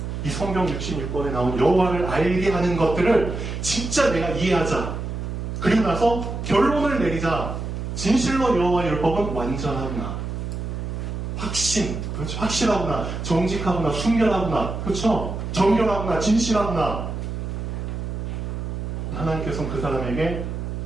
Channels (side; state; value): right; noise; hum, 5 dB below the sound